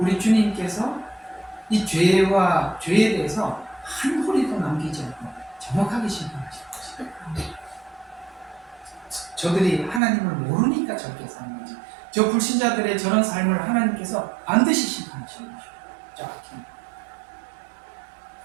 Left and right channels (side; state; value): left; drops out; at 10.0 s